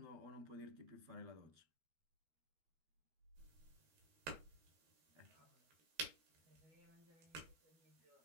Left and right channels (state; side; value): late; left; 12 ms